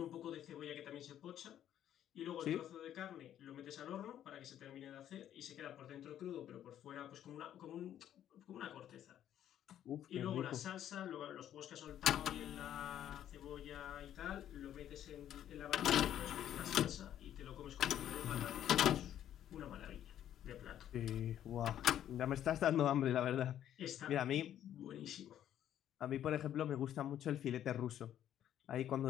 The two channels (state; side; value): quieter; right; 10.9 dB